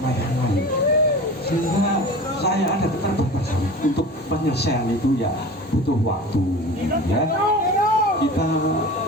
yang lain, sehingga saya ada keterbatasan untuk penyelesaian itu ya butuh waktu ya. Kita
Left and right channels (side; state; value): both; normal; correlation 0.35